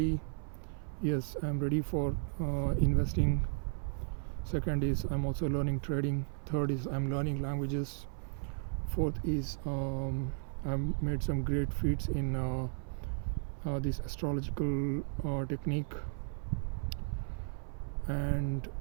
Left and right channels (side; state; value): left; silent; 55 dB below the other